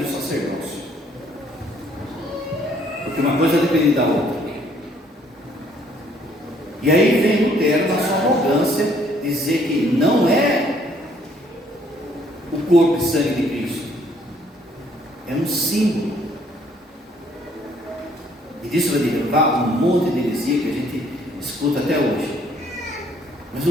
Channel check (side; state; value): both; normal; correlation 0.64